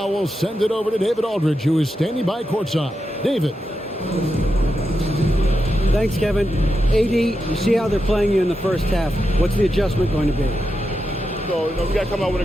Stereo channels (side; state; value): both; normal; correlation 0.87